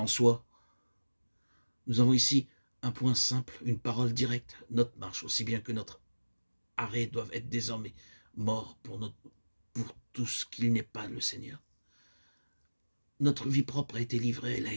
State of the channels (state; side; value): inverted; both; correlation -1.00